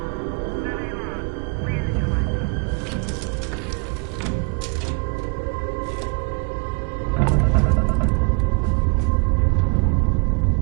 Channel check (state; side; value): quieter; left; 33.7 dB